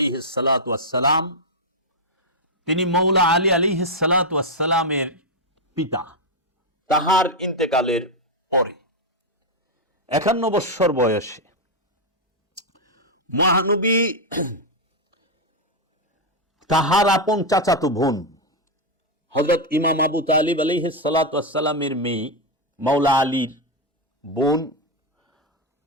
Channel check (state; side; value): normal; both; correlation 0.02